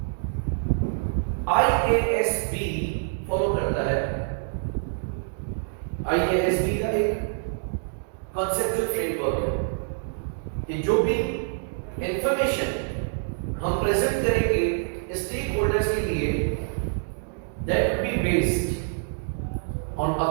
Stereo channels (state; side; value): silent; left; digital silence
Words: IASB फॉलो करता है, IASB का एक कॉन्सेप्चुअल फ्रेमवर्क है कि जो भी इंफॉर्मेशन हम प्रेजेंट करेंगे स्टेक होल्डर्स के लिए, that will be based on